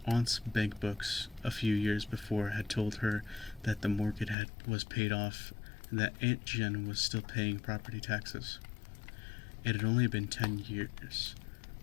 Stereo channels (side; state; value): right; drops out; at 4.4 s